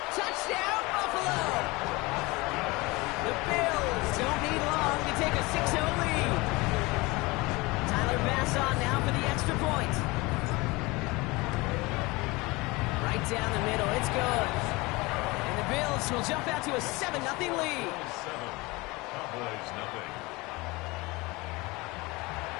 Touchdown, Buffalo. The Bills don't need long to take a 6-0 lead. Tyler Bass on now for the extra point. Right down the middle, it's good. And the Bills will jump out to a 7-0 lead. Cowboys nothing.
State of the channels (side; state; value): right; quieter; 23.4 dB